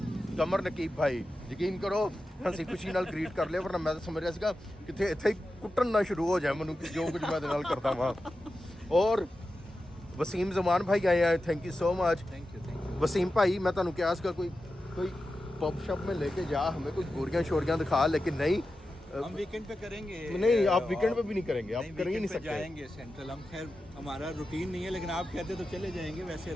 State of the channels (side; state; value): both; normal; correlation 0.92